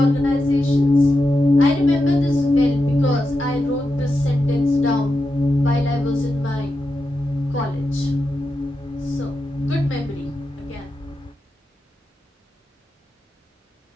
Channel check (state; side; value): normal; both; correlation 0.88